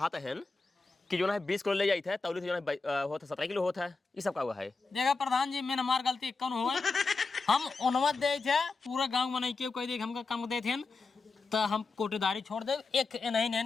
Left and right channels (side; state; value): right; quieter; 4.0 dB